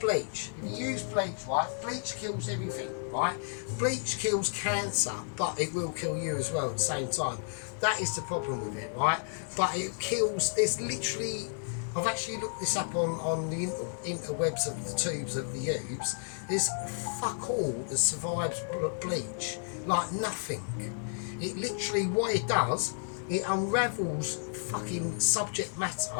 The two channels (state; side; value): silent; right; digital silence